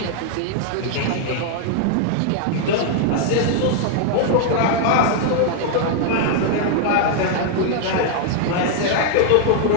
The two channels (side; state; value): both; different; correlation 0.00